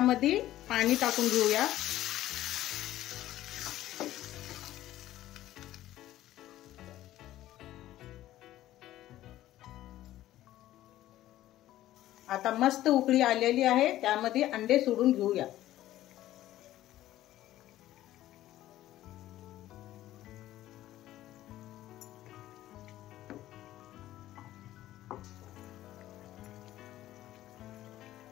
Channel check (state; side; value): quieter; right; 14.2 dB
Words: पाणी टाकून घेऊया। आता मस्त उकळी आलेली आहे, त्यामध्ये अंडे सोडून घेऊया।